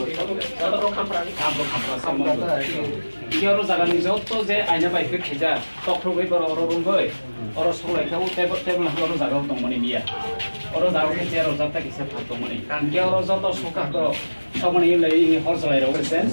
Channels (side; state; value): both; inverted; correlation -1.00